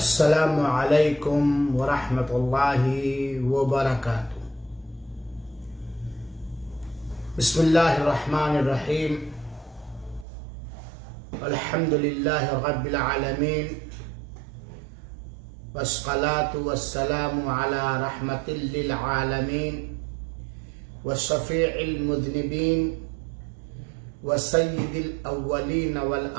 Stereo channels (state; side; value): drops out; left; at 10.2 s